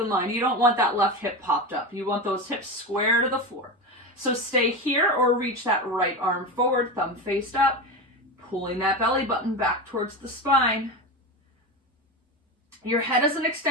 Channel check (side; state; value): both; normal; correlation 0.21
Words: line. You don't want that left hip popped up. You want those hips square to the floor. So stay here or reach that right arm forward, thumb faced up, pulling that belly button back towards the spine. Your head is an